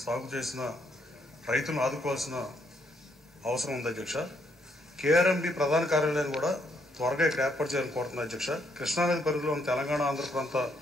సాగు చేసిన రైతులను ఆదుకోవాల్సిన అవసరం ఉంది అధ్యక్ష. కేఆర్ఎంబి ప్రధాన కార్యాలయాన్ని కూడా త్వరగా ఇక్కడ ఏర్పాటు చేయాలని కోరుతున్నారు అధ్యక్ష. కృష్ణానది పరిధిలో ఉన్న తెలంగాణ, ఆంధ్ర ప్రాంత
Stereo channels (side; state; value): both; normal; correlation 0.73